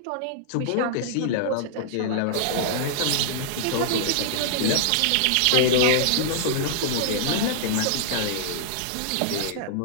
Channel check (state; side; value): different; both; correlation -0.01